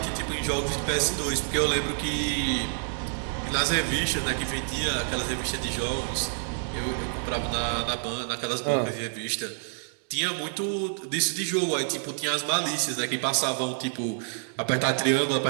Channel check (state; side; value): silent; left; digital silence